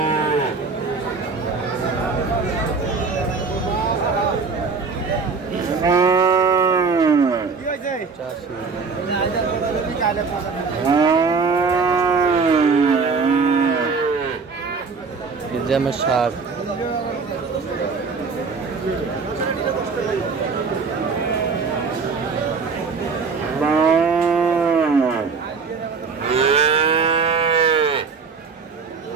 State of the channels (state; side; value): quieter; left; 4.9 dB